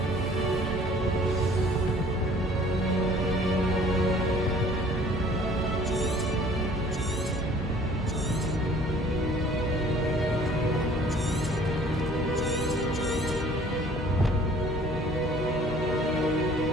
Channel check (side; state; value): both; normal; correlation 0.53